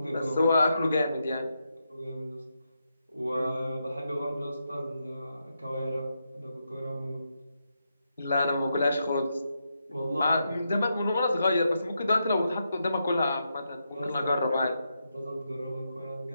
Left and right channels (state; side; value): inverted; both; correlation -0.84